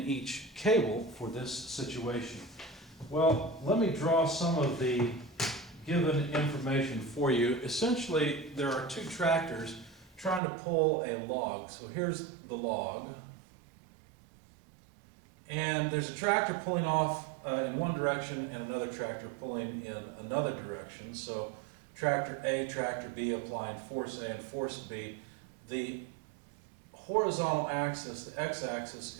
cable for this situation? Well, let me draw some of the given information for you. Essentially, there are two tractors trying to pull a log. So here's the log. And there's a tractor pulling off in one direction and another tractor pulling in another direction. So tractor A, tractor B applying force A and force B. The horizontal axis, the x-axis,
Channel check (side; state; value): left; drops out; at 10.4 s